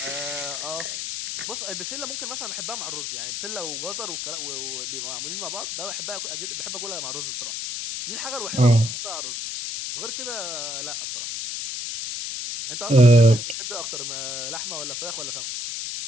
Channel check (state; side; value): noise; left; hiss, 4 dB below the sound